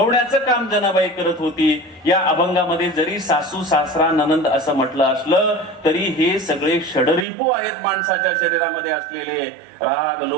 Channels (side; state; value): left; drops out; at 7.2 s